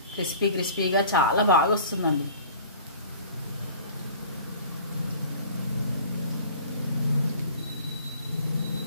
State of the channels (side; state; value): both; inverted; correlation -0.46